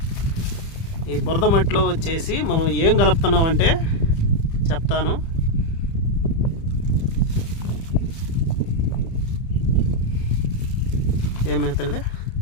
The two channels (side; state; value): right; late; 30 ms